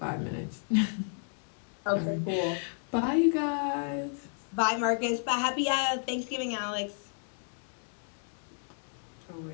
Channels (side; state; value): right; silent; 56 dB below the other